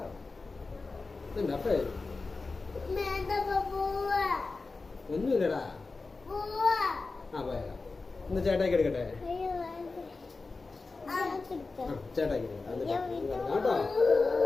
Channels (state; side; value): quieter; right; 3.9 dB